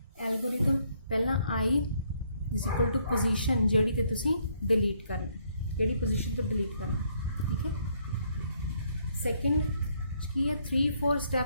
एल्गोरिथम, पहला आई इज इक्वल टू पोजीशन जिहड़ी ते तुसी डिलीट करना, जिहड़ी पोजीशन तो डिलीट करना, ठीक है। सैकेंड की है 3-4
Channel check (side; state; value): both; inverted; correlation -0.69